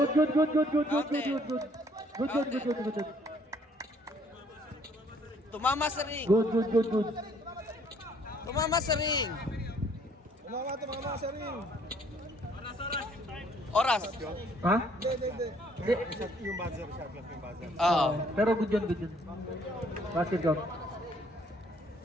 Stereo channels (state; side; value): normal; both; correlation 0.63